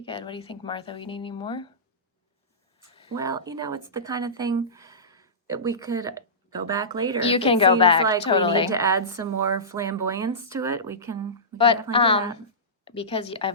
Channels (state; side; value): normal; both; correlation -0.20